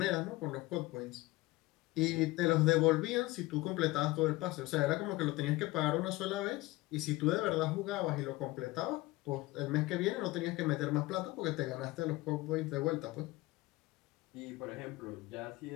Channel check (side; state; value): right; quieter; 19.9 dB